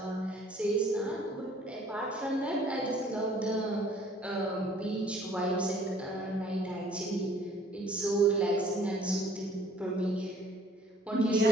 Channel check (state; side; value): normal; both; correlation 0.56